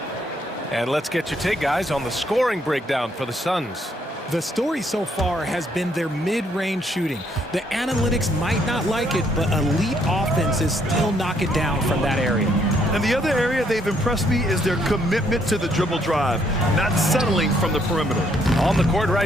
And let's get your take, guys, on the scoring breakdown for the Suns. The story so far has been their mid-range shooting. The analytics might not like it, but elite offenses still knock it down from that area. And the other area they've impressed me is their commitment to the dribble drive, not settling from the perimeter. On the court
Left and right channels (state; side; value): normal; both; correlation 0.70